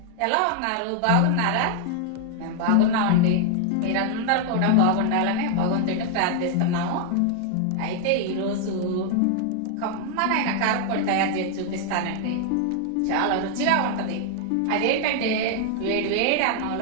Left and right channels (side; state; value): both; different; correlation 0.00